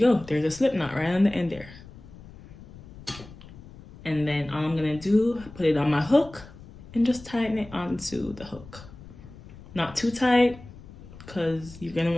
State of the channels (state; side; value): noise; left; rumble, 18 dB below the sound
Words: go. There's a slip knot right on the end there. And then all I'm gonna do, put it on my hook and just tighten it onto the hook. Not too tight, because you're gonna